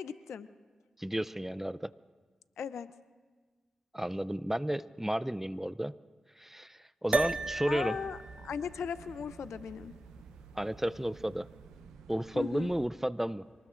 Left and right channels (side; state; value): both; normal; correlation 0.94